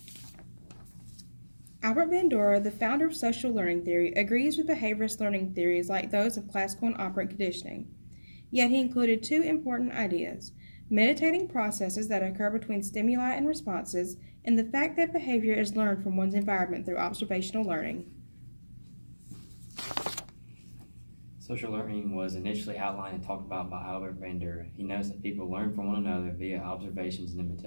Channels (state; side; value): inverted; both; correlation -1.00